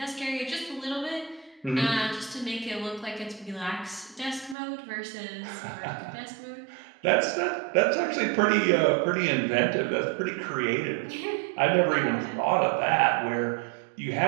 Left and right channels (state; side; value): drops out; left; at 4.5 s